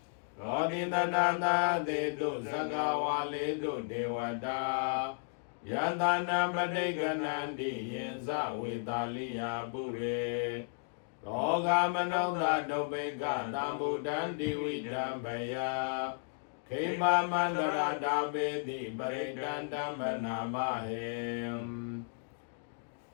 သောတိတနာနာသေတုသက္ကဝါလေတုဒေဝတာယတနာပဋိကနန္တိယင်ဇဝေတာလိယပုရေရောဂမနောသဒုပိကသံဗုဒ္ဓံတိဝိဓမ္ပယခေမမန္တရာတာပေတိပရိတန္တမနာမဟေ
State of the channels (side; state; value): right; silent; digital silence